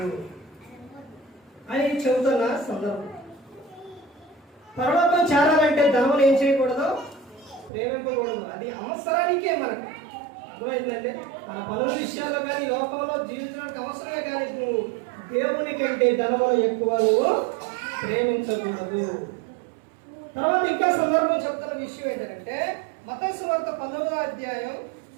అని చెబుతున్న సందర్భం. పరలోకం చేరాలంటే ధనం ఏం చేయకూడదు? ప్రేమించకూడదు. అది అవసరానికే మనకు. అర్థమైందంటే మన పనుల విషయాల్లో కానీ లోకంలో జీవించడానికి అవసరమే, కానీ నువ్వు దేవుని కంటే ధనమును ఎక్కువ నువ్వు ప్రేమించకూడదు. తర్వాత ఇంకా సందర్భం చెప్తున్న విషయం ఏంటంటే మత్తయి సువార్త 19:19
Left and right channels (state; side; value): drops out; left; at 7.7 s